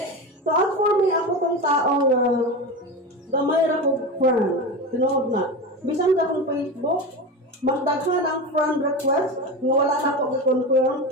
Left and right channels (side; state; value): both; normal; correlation 0.24